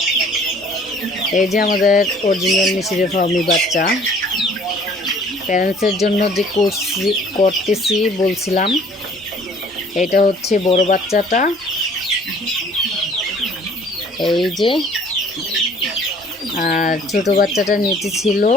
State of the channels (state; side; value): normal; both; correlation 0.54